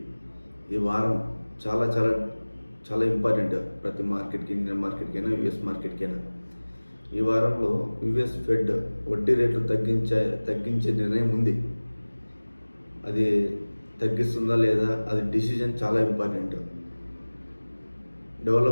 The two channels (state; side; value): inverted; both; correlation -1.00